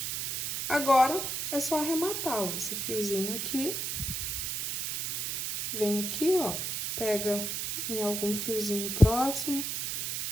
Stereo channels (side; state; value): right; noise; hiss, 2 dB below the sound